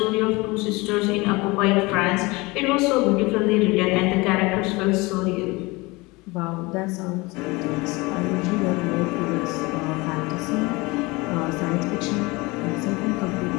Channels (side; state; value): right; quieter; 23.8 dB